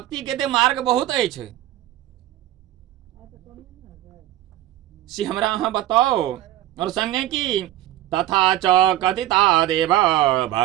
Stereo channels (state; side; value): quieter; left; 14.0 dB